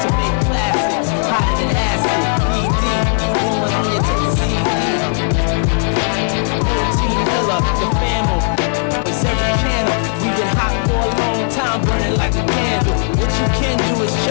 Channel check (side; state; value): right; silent; 58 dB below the other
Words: to make classics. Hotter than acid, ED, rolling on your CD. No Team Miller, the family. It's every channel. We've been hot for a long time, burning like a candle. What you can do is